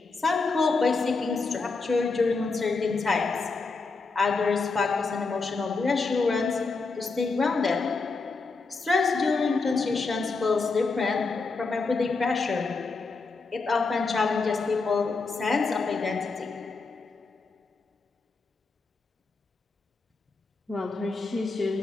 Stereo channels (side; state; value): right; quieter; 4.1 dB